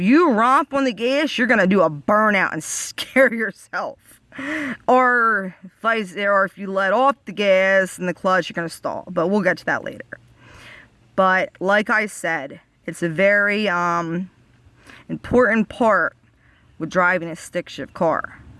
romp on the gas, you're going to do a burnout and scare yourself. Or if you let off the gas and the clutch, you're going to stall. But we'll get to that later. But like I said, it's a very important part with driving a stick shift car.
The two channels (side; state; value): both; identical; correlation 1.00